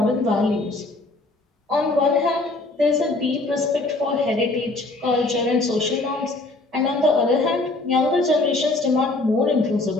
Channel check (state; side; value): quieter; right; 3.0 dB